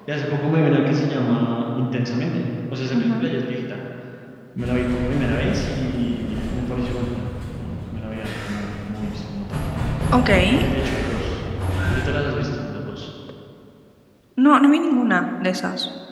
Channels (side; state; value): both; identical; correlation 1.00